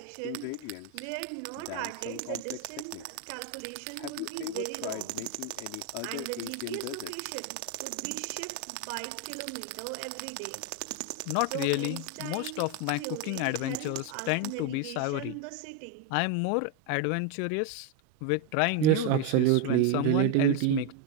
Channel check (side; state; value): both; different; correlation 0.02